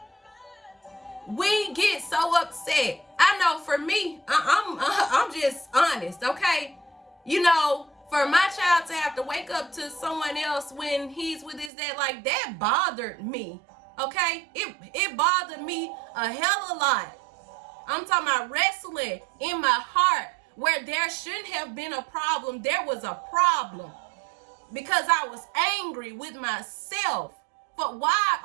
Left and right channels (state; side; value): drops out; left; at 11.7 s